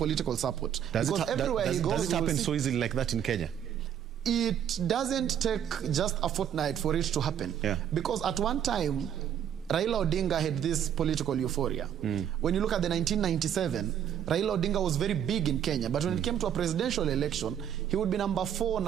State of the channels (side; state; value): left; quieter; 9.4 dB